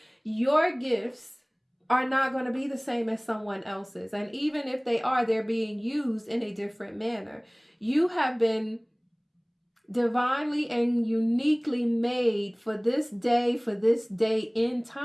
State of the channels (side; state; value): both; identical; correlation 1.00